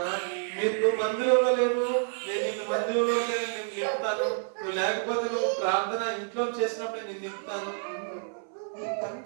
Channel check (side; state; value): left; silent; 59 dB below the other